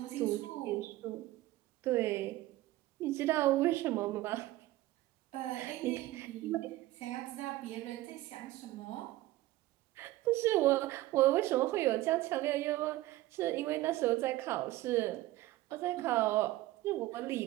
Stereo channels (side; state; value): left; quieter; 16.9 dB